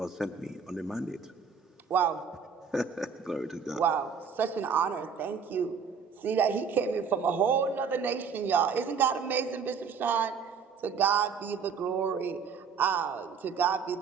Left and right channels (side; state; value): left; quieter; 6.1 dB